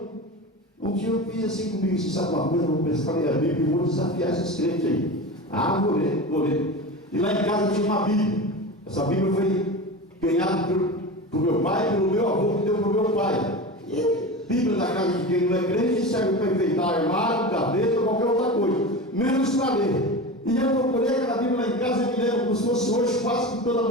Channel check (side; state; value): both; normal; correlation 0.28